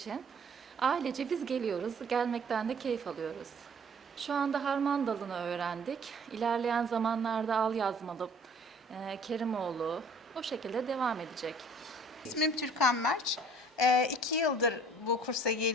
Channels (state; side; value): normal; both; correlation 0.54